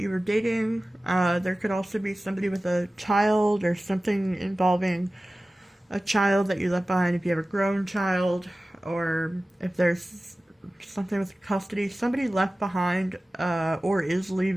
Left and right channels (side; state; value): both; normal; correlation 0.96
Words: you were dating. There could also be somebody with a child or something involving a child that you left behind if you have a grown child, or if there's something with custody. Somebody left behind, or is